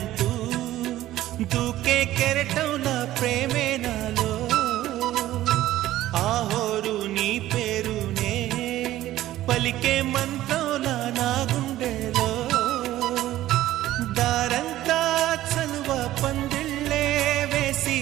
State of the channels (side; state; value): left; quieter; 14.6 dB